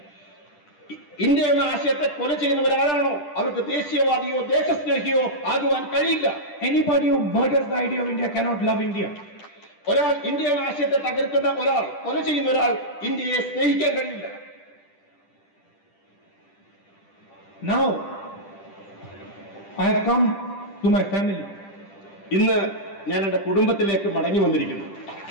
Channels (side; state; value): right; late; 10 ms